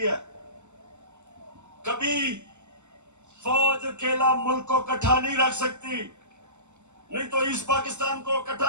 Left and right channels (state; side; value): late; left; 0.83 ms